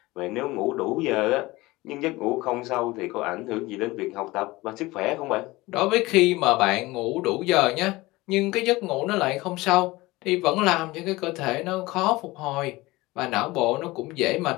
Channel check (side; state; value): right; quieter; 20.4 dB